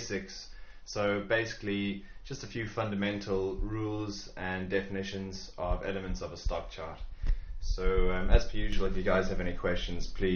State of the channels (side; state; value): both; identical; correlation 1.00